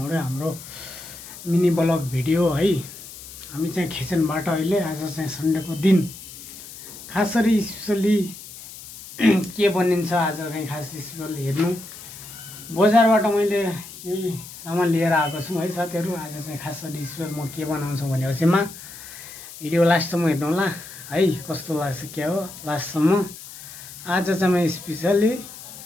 हाम्रो मिनी ब्लग भिडियो है। हामी चाहिँ खिचनबाट अहिले आज चाहिँ सन्डेको दिन खासरी स्पेसली के बनिन्छ आज चाहिँ खास स्पेसल हेर्नु। बजारबाट मैले यही सामान लिएर आएको छु है साथीहरु। आज चाहिँ खासरी स्पेसल म के बनाउँछु भनेपछिमा भिडियो लास्टसम्म हेर्नु होला है, कस्तो लाग्छ के हो लास्टसम्म। आज चाहिँ म स्पेसली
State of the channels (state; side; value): noise; left; hiss, 15 dB below the sound